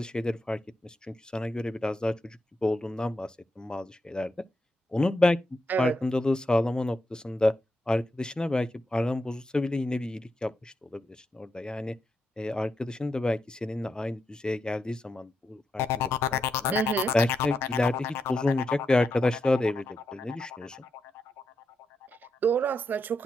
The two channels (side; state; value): both; normal; correlation 0.84